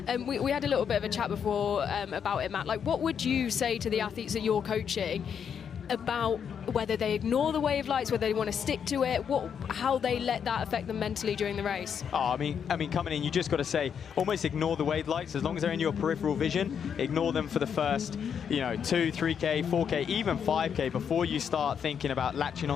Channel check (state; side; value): quieter; right; 7.6 dB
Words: We had a little bit of a chat before about it, Matt. Like, what would you say to the athletes that you're coaching about whether they ignore the wave lights, whether they want to stick to it, how they let that affect them mentally during the race? Oh, I mean, coming in, you just got to say, almost ignore the wave lights. As long as they're in your peripheral vision, ignore them for the first, 2, 3K, 4K, even 5K before you start thinking about latching